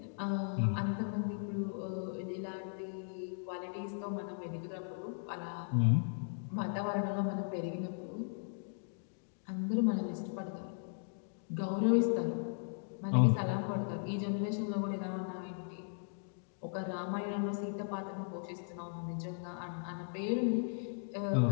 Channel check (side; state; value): right; silent; digital silence